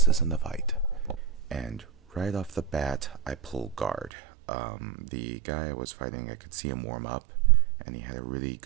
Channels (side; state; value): left; drops out; at 4.1 s